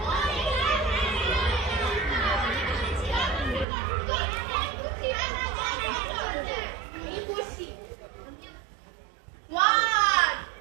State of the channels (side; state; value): left; drops out; at 3.7 s